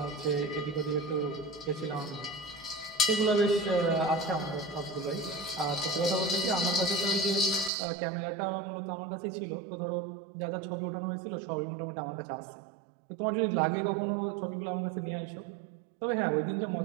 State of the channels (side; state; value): left; drops out; at 7.7 s